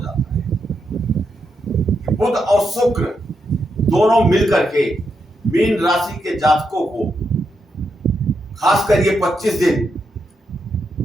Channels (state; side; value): normal; both; correlation 0.83